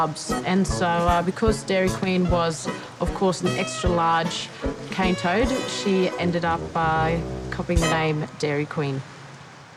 And so because Dairy Queen was, of course, an extra large cane toad, she ended up copying the name Dairy Queen.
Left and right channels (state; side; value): identical; both; correlation 1.00